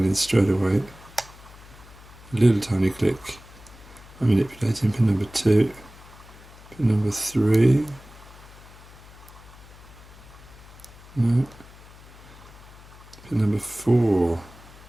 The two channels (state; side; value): noise; left; hum, 21 dB below the sound